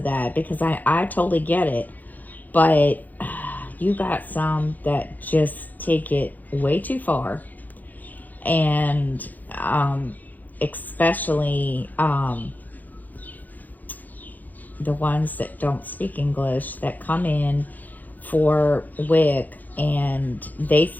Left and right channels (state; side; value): late; right; 0.083 ms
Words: that, because I totally get it. But you got some that just take it way too far. And especially the ones that don't speak English that come in for WIC and they